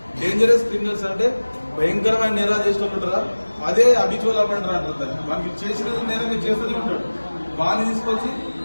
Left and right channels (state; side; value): inverted; both; correlation -1.00